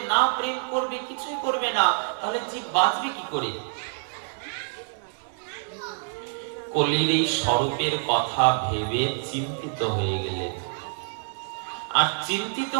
না প্রেম করবে, কিছুই করবে না, তাহলে জীব বাঁচবে কি করে? কলির এই স্বরূপের কথা ভেবে চিন্তিত হয়ে গেলেন। আর চিন্তিত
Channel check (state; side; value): silent; left; digital silence